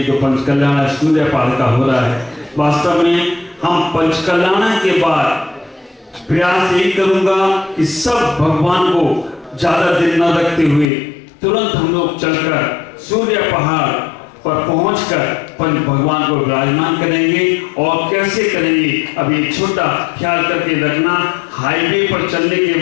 जो पंचकल्याण सूर्य पाल का हो रहा है, वास्तव में हम पंचकल्याण के बाद प्रयास यही करूंगा कि सब भगवान को ज्यादा दिन न रखते हुए तुरंत हम लोग चलकर सूर्य पहाड़ पर पहुंचकर पंच भगवान को विराजमान करेंगे। और कैसे करेंगे, अब एक छोटा ख्याल करके रखना, हाईवे पर चलने के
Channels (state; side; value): drops out; right; at 10.9 s